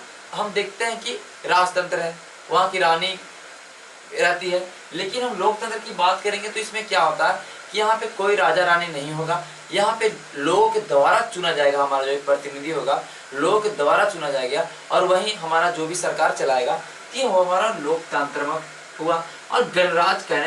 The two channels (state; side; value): identical; both; correlation 1.00